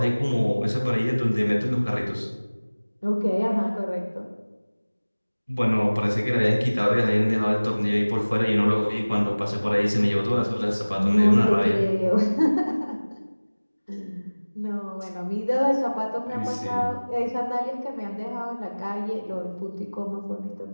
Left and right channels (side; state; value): both; inverted; correlation -1.00